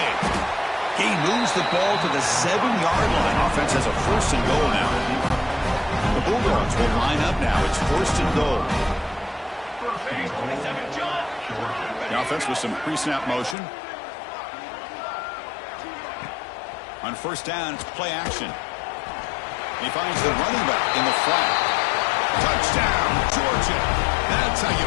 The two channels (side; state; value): right; drops out; at 13.6 s